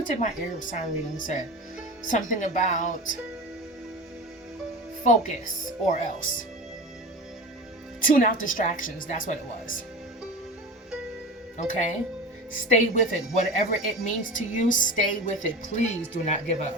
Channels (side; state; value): both; normal; correlation 0.31